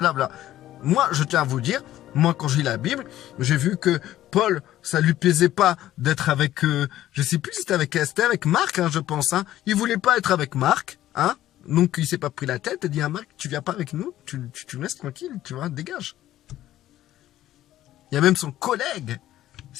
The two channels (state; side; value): quieter; right; 13.6 dB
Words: Moi, je tiens à vous dire, moi, quand je lis la Bible, j'ai vu que Paul, ça lui plaisait pas d'être avec, je sais plus si c'était avec Esther, avec Marc, hein, je pense. Hein. Il voulait pas être avec Marc, hein. Donc il s'est pas pris la tête et dit à Marc, tu viens pas avec nous, tu me laisses tranquille, tu vois, dégage. Il y a même son collègue,